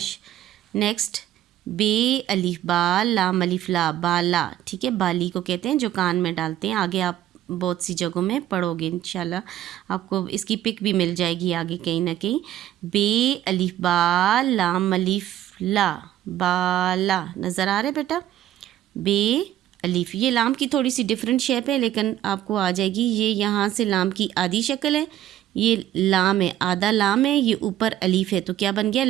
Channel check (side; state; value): left; quieter; 12.6 dB